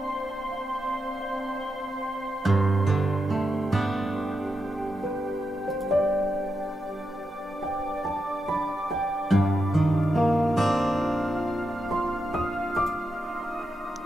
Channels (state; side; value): normal; both; correlation 0.86